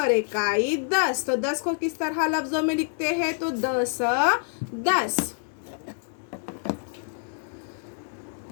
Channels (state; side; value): silent; right; 59 dB below the other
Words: इकाई 10। तो 10 को किस तरह लफ्ज़ों में लिखते हैं, तो 10 10।